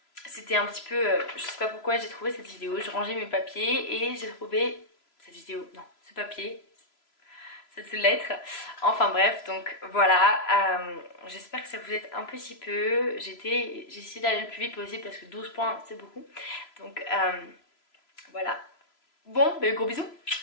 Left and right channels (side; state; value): right; late; 3.0 ms